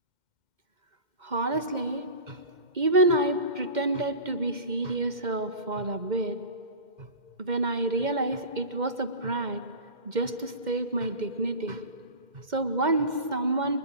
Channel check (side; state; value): left; late; 2.1 ms